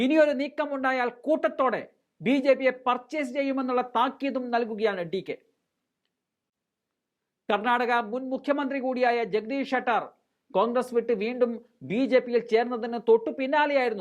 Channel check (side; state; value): both; identical; correlation 1.00